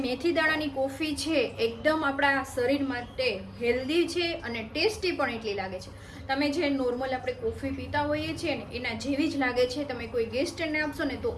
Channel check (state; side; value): identical; both; correlation 1.00